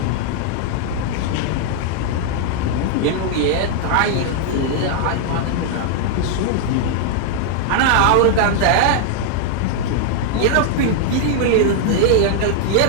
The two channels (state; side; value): different; both; correlation 0.00